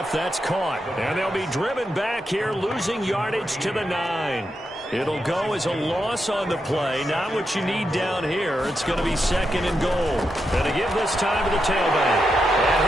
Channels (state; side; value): normal; both; correlation 0.85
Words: That's caught. And they'll be driven back here, losing yardage to the 9. It'll go as a loss on the play. Not what you need down here. It's going to be second and goal. And to give this time to the tailback. And